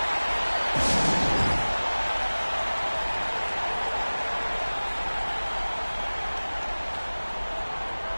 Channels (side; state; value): both; inverted; correlation -1.00